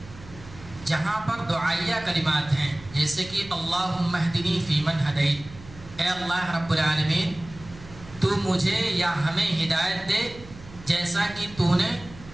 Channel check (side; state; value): right; noise; hum, 18 dB below the sound